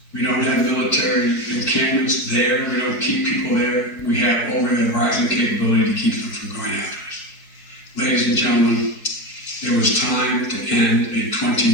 We don't have military encampments there. We don't keep people there. We have over-the-horizon capability to keep them from going after us. Ladies and gentlemen, there was time to end a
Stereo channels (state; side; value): late; right; 4.9 ms